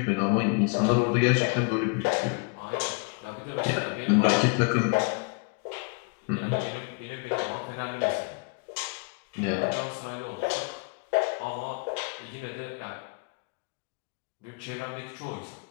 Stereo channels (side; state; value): right; quieter; 33.1 dB